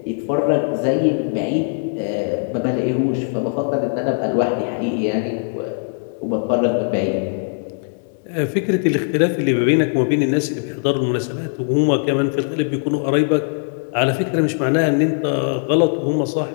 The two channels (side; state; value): right; silent; digital silence